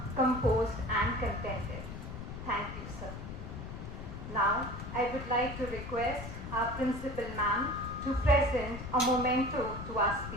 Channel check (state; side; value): noise; left; rumble, 9 dB below the sound